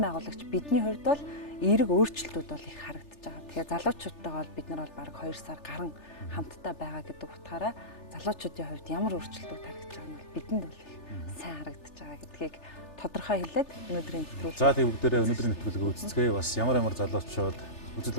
байгуулагч бидний хувьд бол эерэг өөрчлөлтүүд бол их харагдаж байгаа. Тэгэхээр залуучуудтайгаа бол бид нар бол бараг 2 сар гарan хамтдаа байгаа гэдэг утгаараа залуучуудын хувьд ямар өөрчлөлтүүд харагдаж байгаа нь бол бидэнд бол их сайн харагдаж байгаа гэдгийг тодорхой хэлээд өнөөдрийн нэвтрүүлэг. За тийм бүгдээрээ өнөөдрийн нэвтрүүлгийг үзцгээе. Бас ямар залуучууд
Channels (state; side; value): late; right; 3.4 ms